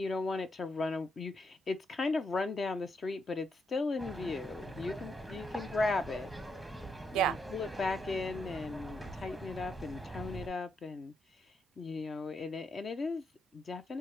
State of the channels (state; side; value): normal; both; correlation 0.79